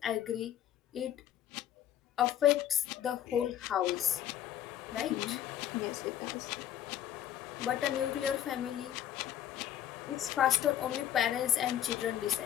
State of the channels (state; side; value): quieter; right; 10.9 dB